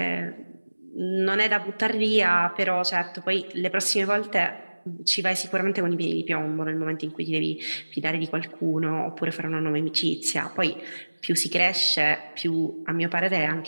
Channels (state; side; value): inverted; both; correlation -1.00